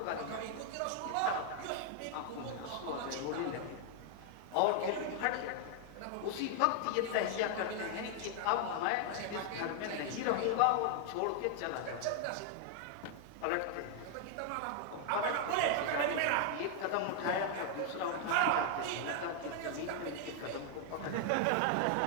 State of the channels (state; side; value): different; both; correlation 0.00